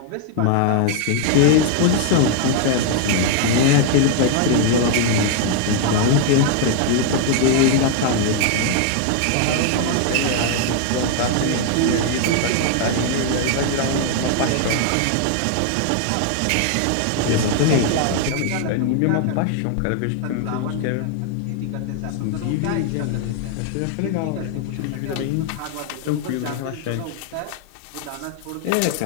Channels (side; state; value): both; different; correlation 0.00